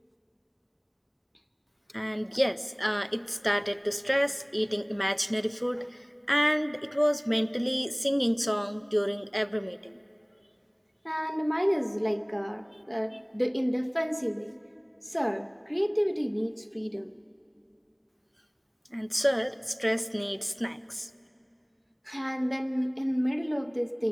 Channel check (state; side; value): identical; both; correlation 1.00